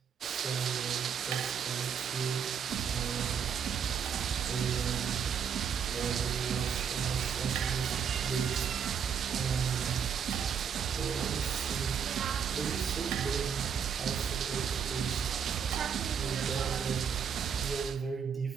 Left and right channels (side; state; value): left; quieter; 7.4 dB